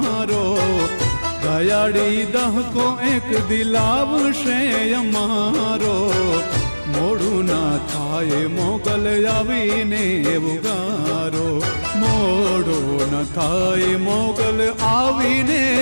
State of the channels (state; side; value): inverted; both; correlation -1.00